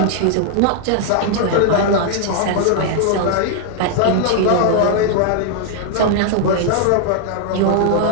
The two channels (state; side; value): different; both; correlation -0.01